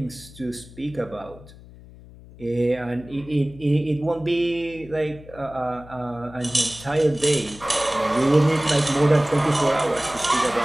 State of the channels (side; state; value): left; noise; hum, 20 dB below the sound